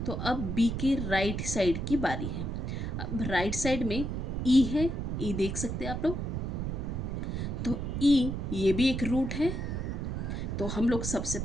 तो अब बी की राइट साइड की बारी है। अब राइट साइड में ई है, ई देख सकते हैं आप लोग। तो ई ये भी एक रूट है, तो हम लोग सबसे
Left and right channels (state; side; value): noise; right; rumble, 3 dB below the sound